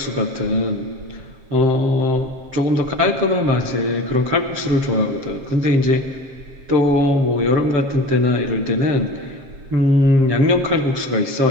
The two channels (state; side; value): late; left; 7.5 ms